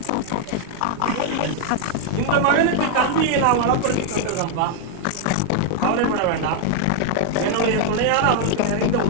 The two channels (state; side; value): different; both; correlation 0.00